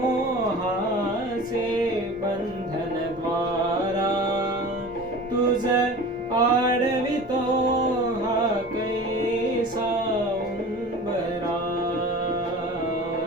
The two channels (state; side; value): normal; both; correlation 0.38